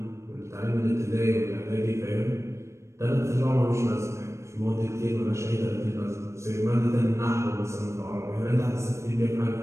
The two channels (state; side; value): late; left; 0.14 ms